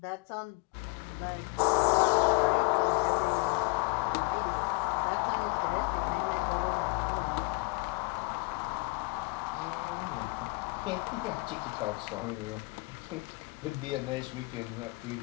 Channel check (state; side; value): quieter; right; 30.5 dB